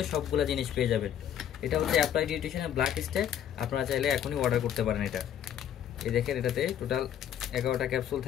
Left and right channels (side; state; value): right; quieter; 9.9 dB